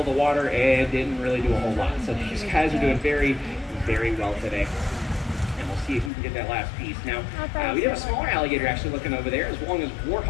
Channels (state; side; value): drops out; right; at 6.1 s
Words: of the water and didn't really do a whole lot. So these guys are doing very, very well today. See if we can get that last piece. Now, we have a smaller alligator actually looking over there, as long as